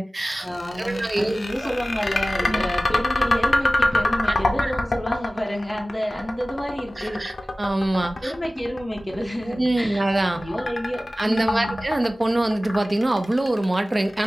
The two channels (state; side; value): normal; both; correlation 0.97